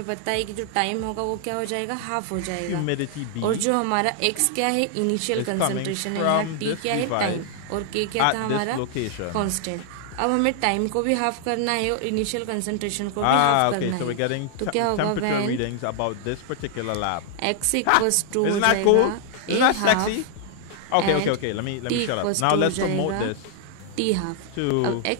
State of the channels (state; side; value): different; both; correlation 0.00